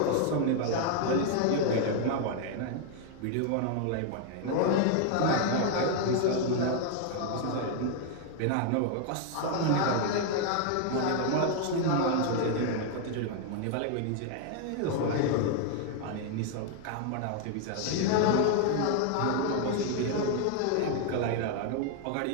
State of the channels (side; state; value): both; different; correlation 0.00